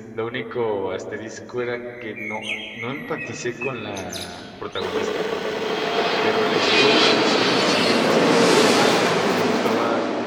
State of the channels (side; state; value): both; identical; correlation 1.00